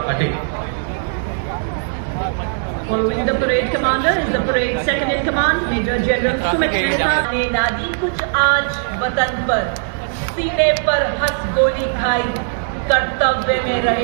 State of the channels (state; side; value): silent; left; digital silence